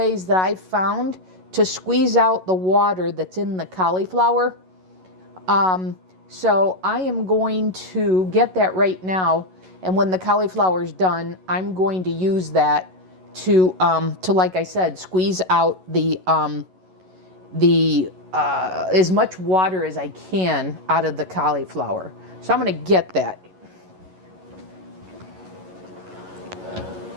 that I've found to squeeze out the water that's in the cauliflower. So I am going to get that right now, and when the cauliflower is done, I'm going to use that to like I said, squeeze out the as much water as I can out of the cauliflower. So I'm going to get that.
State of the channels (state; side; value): late; left; 11 ms